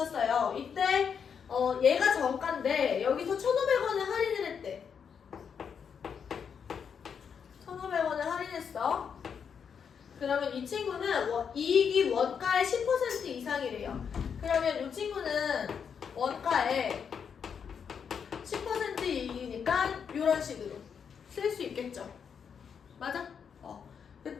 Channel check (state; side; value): quieter; right; 7.0 dB